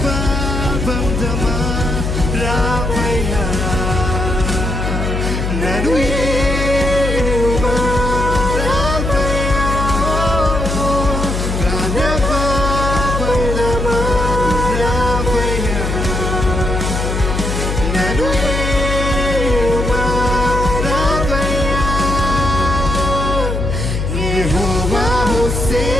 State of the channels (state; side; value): noise; left; hum, 2 dB below the sound